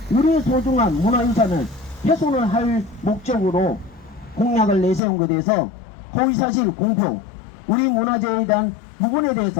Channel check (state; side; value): drops out; right; at 5.0 s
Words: 우리의 소중한 문화유산을 훼손을 할 목적으로 공약을 내세운 것에 대해서 허위사실 공표, 우리 문화재에 대한 부분에